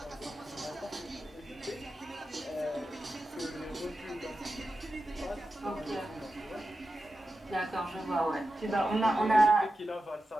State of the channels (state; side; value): normal; both; correlation 0.92